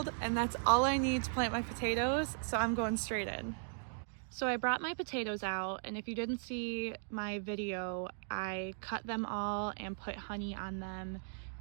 and that's all I need to plant my potatoes, so I'm going straight in. So I brought my potatoes out, and if you didn't see my video, I cut them all and put honey on them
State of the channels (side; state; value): left; silent; digital silence